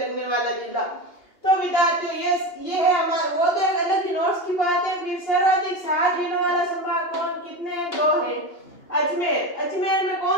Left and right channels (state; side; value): late; right; 2.9 ms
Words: वाला जिला। तो विद्यार्थियों, ये है हमारा वो तो अलग ही नोट्स की बात है। फिर सर्वाधिक 7 जिलों वाला संभाग कौन कितने हैं? 2 है। अजमेर में